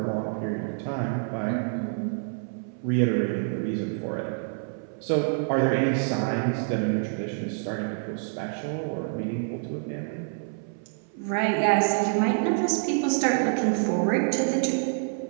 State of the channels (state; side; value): silent; left; 60 dB below the other